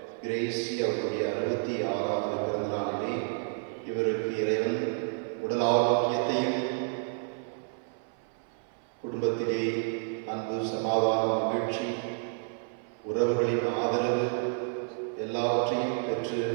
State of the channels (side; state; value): left; silent; 56 dB below the other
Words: Crazy அவருடைய 66வது பிறந்த நாளிலே இவருக்கு இறைவன் உடல் ஆரோக்கியத்தையும் குடும்பத்திலே அன்பு, சமாதானம், மகிழ்ச்சி, உறவுகளின் ஆதரவு எல்லாவற்றையும் பெற்று